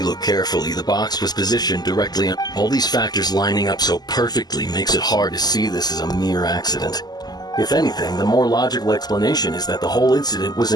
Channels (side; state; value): right; late; 0.20 ms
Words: look carefully, the box was positioned directly on. All these factors lining up so perfectly makes it hard to see this as a mere accident. If anything, the more logical explanation is that the whole incident was